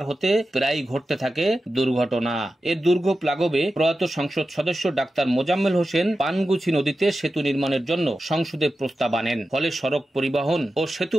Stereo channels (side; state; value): both; normal; correlation 0.92